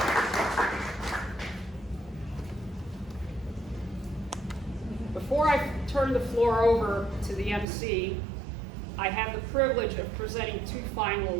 Before I turn the floor over to the MC, I have the privilege of presenting two final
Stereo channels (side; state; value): left; drops out; at 7.7 s